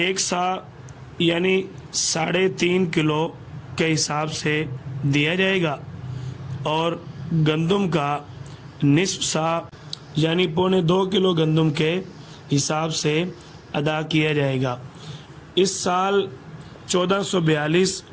سا یعنی 3.5 کلو کے حساب سے دیا جائے گا، اور گندم کا نصف سا یعنی 2.25 کلو گندم کے حساب سے ادا کیا جائے گا۔ اس سال 1442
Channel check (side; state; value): both; identical; correlation 1.00